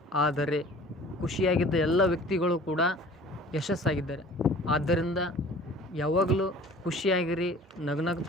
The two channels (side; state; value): both; normal; correlation 0.47